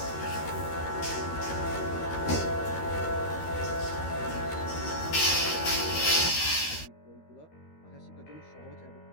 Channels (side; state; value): right; late; 13 ms